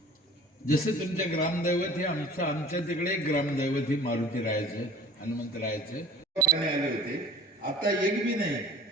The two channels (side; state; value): both; normal; correlation 0.45